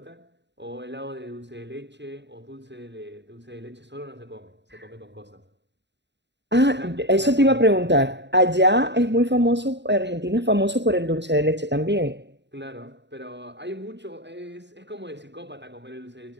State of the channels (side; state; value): left; late; 0.51 ms